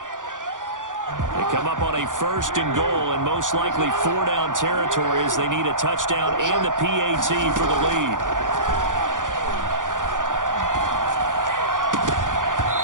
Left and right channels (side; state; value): left; late; 0.88 ms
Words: They come up on a first and goal and most likely 4-down territory as they need a touchdown and the PAT for the lead.